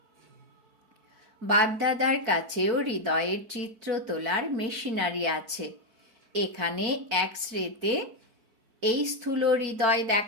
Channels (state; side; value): late; left; 4.5 ms